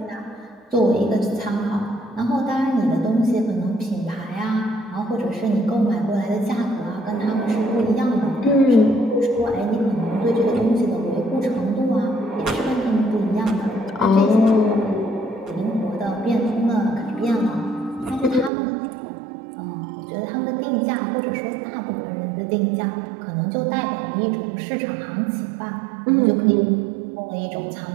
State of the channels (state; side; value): drops out; left; at 18.5 s